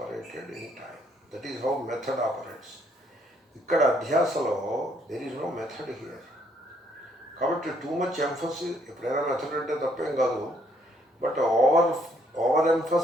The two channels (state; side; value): normal; both; correlation 0.68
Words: in time. That is how method operates. ఇక్కడ అధ్యాసలో there is no method here. కాబట్టి టూ మచ్ ఎంఫసిస్, ఎప్పుడైనా మెథడ్ అంటే తప్పేం కాదు, but over